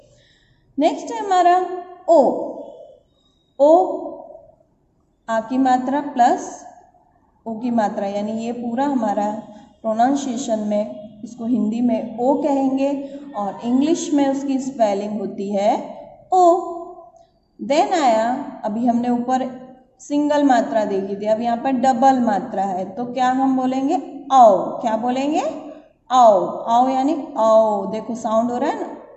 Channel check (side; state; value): both; identical; correlation 1.00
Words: नेक्स्ट है हमारा ओ. ओ आ की मात्रा प्लस ओ की मात्रा, यानी ये पूरा हमारा प्रोनाउंसिएशन में इसको हिंदी में ओ कहेंगे और इंग्लिश में उसकी स्पेलिंग होती है ओ. देन आया, अभी हमने ऊपर सिंगल मात्रा देखी थी, अब यहाँ पर डबल मात्रा है तो क्या हम बोलेंगे? आओ. क्या बोलेंगे? आओ. आओ यानी आओ. देखो साउंड हो रहा है ना,